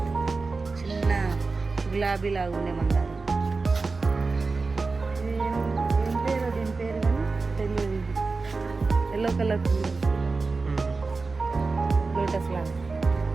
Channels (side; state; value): left; quieter; 4.0 dB